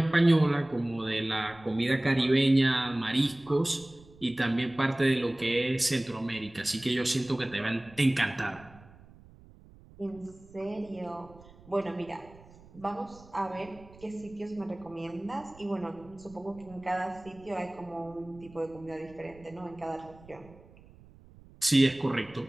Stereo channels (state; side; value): noise; right; rumble, 23 dB below the sound